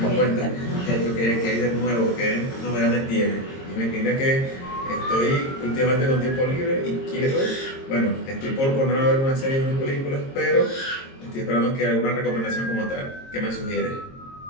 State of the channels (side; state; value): right; late; 22 ms